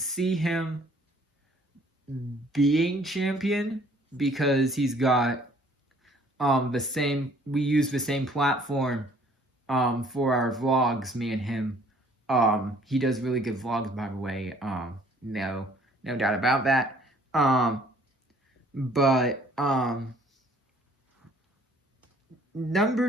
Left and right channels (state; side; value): normal; both; correlation 0.58